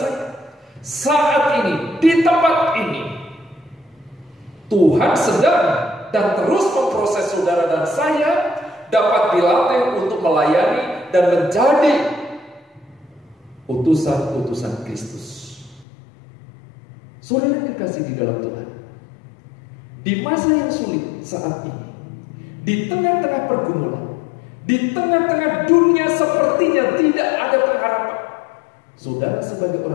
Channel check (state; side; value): drops out; right; at 15.9 s